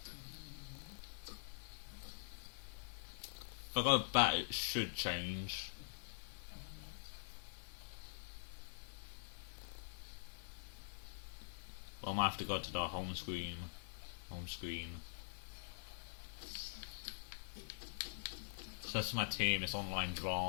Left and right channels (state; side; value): silent; right; digital silence